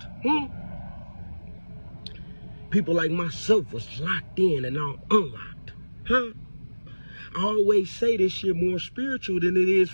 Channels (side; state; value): both; inverted; correlation -1.00